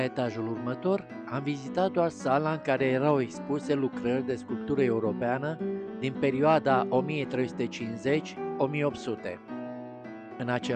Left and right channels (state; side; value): identical; both; correlation 1.00